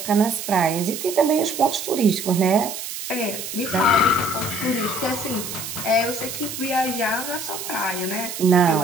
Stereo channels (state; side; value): noise; right; hiss, 7 dB below the sound